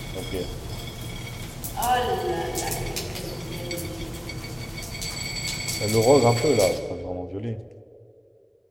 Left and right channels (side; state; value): both; identical; correlation 1.00